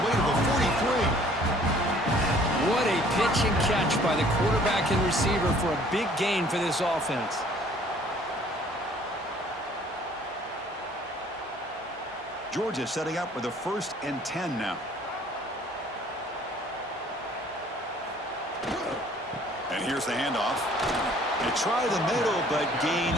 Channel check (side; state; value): both; normal; correlation 0.56